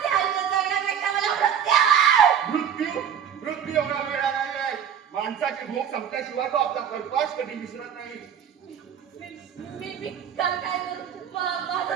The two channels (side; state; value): left; quieter; 8.4 dB